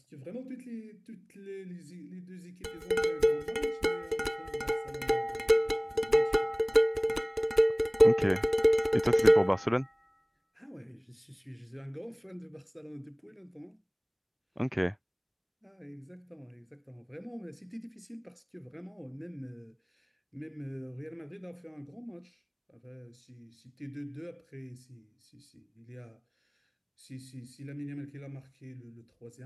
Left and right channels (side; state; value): both; identical; correlation 1.00